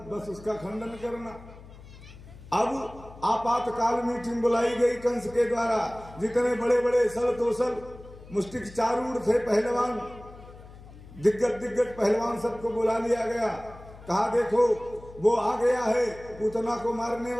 बस उसका खंडन करना। अब आपातकाल मीटिंग बुलाई गई कंस के द्वारा। जितने बड़े बड़े सल तोसल मुष्टिक चारूढ़ थे पहलवान, दिग्गज पहलवान सबको बुला लिया गया। कहा देखो वो आ गया है, पूतना को मारने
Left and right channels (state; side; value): noise; left; hum, 18 dB below the sound